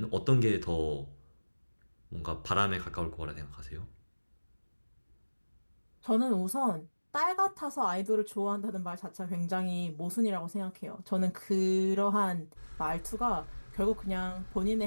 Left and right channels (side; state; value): both; inverted; correlation -1.00